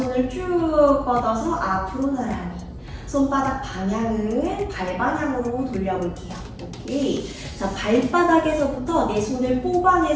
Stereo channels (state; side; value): identical; both; correlation 1.00